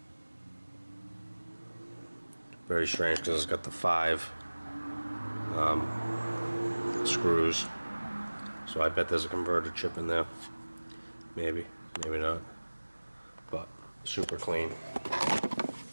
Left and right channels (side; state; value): both; inverted; correlation -1.00